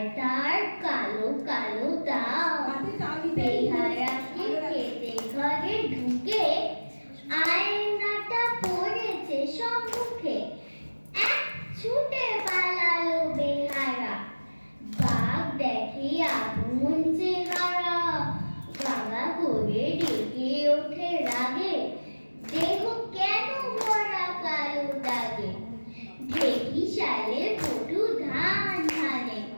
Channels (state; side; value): inverted; both; correlation -1.00